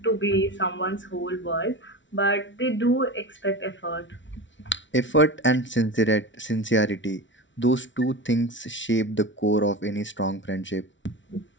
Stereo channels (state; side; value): late; right; 0.55 ms